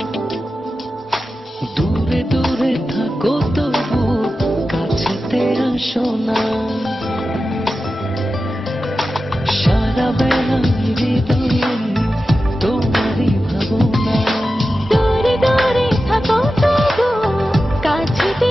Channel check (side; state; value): both; normal; correlation 0.93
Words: দূরে দূরে থাকো তবু কাছেতে আসো না। সারা বেলা হৃদয়ে তোমারই ভাবনা। দূরে দূরে থাকো তবু কাছেতে